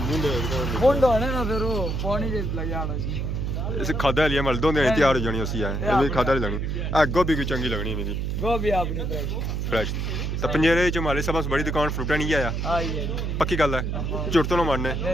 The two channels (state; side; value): noise; right; hum, 1 dB below the sound